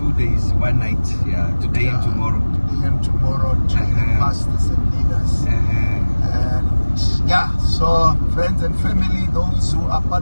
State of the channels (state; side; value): inverted; both; correlation -1.00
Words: days, 1 night. Yeah, today and tomorrow. Today and tomorrow, training pastors and leaders. And yeah, so friends and family, those who are